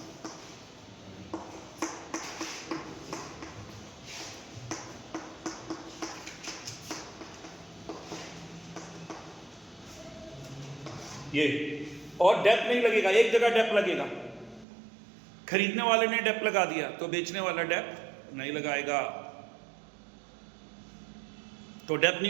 ये, और डेप नहीं लगेगा, एक जगह डेप लगेगा। खरीदने वाले ने डेप लगा दिया तो बेचने वाला डेप नहीं लगाएगा, तो डेप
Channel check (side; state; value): left; drops out; at 14.7 s